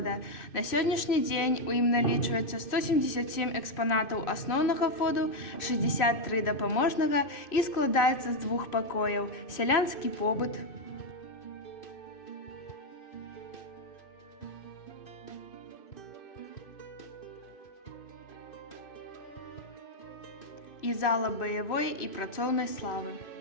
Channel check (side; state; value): right; late; 2.6 ms